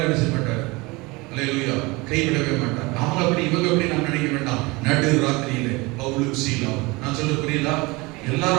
என்ன செய்ய மாட்டார், அல்லேலூயா, கைவிடவே மாட்டார். அவங்க அப்படி இவங்க அப்படி நாம் நினைக்க வேண்டாம். நடு ராத்திரியிலே பவுலும் சீலாவும், நான் சொல்ல புரியுதா? எல்லாரும்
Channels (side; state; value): left; quieter; 24.1 dB